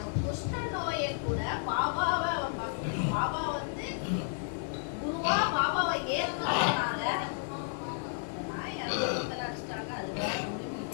குஷ்ட நோயை கூட பாபாவை பாபா வந்து குருவா பாபாவை ஏற்கனதுனால நாய் அடிச்சிட்டாங்க. அது வேற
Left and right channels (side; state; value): right; silent; 56 dB below the other